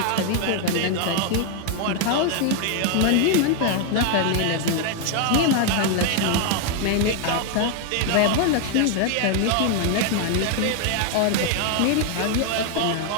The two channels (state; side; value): different; both; correlation 0.00